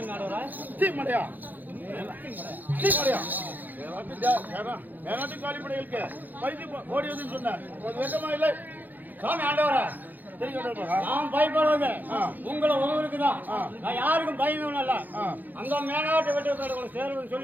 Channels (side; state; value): left; late; 0.085 ms